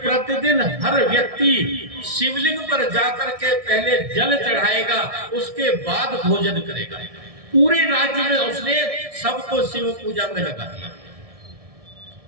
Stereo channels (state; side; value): late; left; 1.6 ms